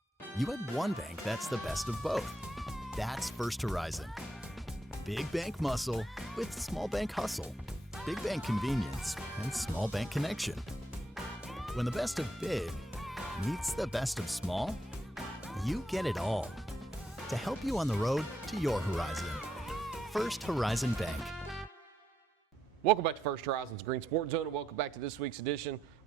you had one bank that's the best of both? That's First Horizon. Big bank muscle with small bank hustle. Big bank convenience and small bank connection. When the best of big meets the best of small, you get it all. To help you on the road to your horizon. First Horizon Bank. Welcome back to First Horizon's Greene Sports Zone, and welcome back to this week's edition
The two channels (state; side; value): normal; both; correlation 0.79